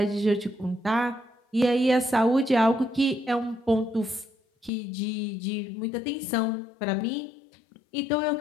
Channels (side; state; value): right; drops out; at 4.7 s